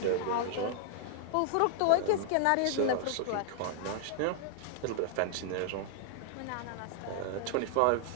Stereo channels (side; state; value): both; different; correlation -0.01